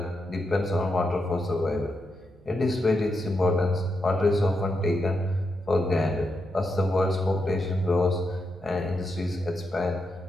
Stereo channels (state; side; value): noise; right; hum, 27 dB below the sound